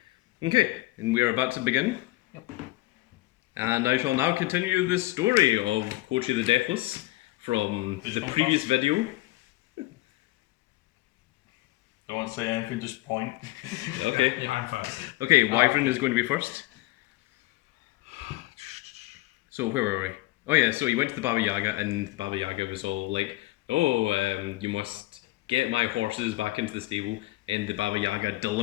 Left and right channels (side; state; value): right; quieter; 19.1 dB